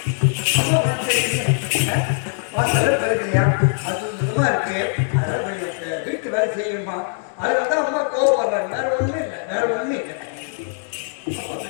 வீட்டு வேலை செய்யணுமா அதுதான் அம்மா கோவப்படுறாங்க. வேற ஒண்ணுமே இல்லை வேற ஒண்ணுமே இல்லை.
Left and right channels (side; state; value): right; silent; 65 dB below the other